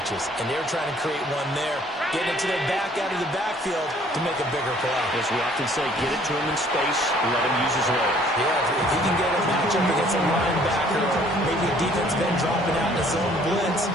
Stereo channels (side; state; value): both; normal; correlation 0.58